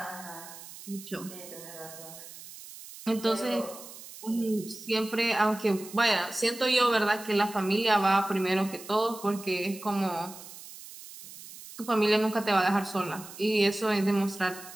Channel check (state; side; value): noise; right; hiss, 15 dB below the sound